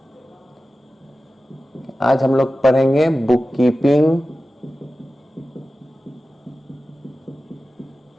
आज हम लोग पढ़ेंगे बुक कीपिंग,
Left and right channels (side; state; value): both; normal; correlation 0.94